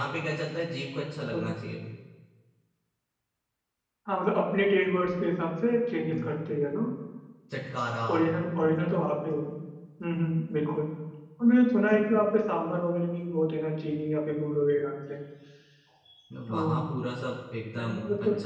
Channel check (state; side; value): identical; both; correlation 1.00